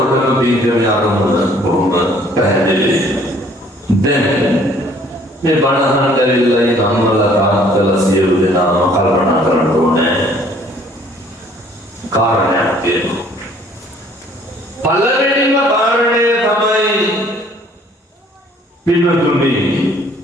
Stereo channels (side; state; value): both; normal; correlation 0.58